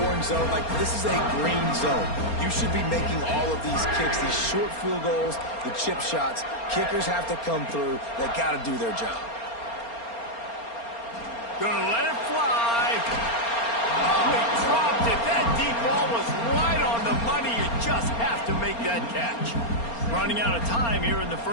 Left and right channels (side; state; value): right; late; 4.3 ms